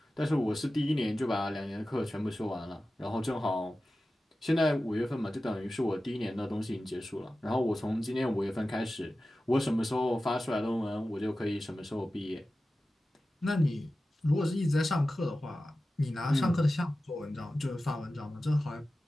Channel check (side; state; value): both; normal; correlation 0.95